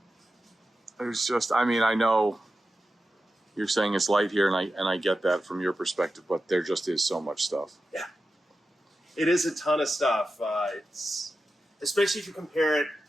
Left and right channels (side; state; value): both; normal; correlation 0.91